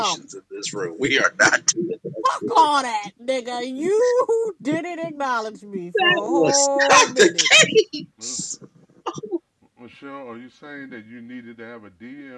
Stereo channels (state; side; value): identical; both; correlation 1.00